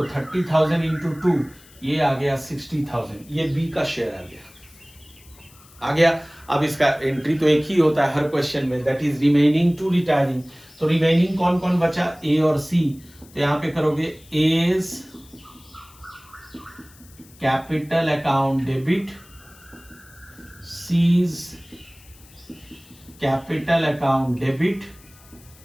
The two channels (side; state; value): left; noise; hiss, 25 dB below the sound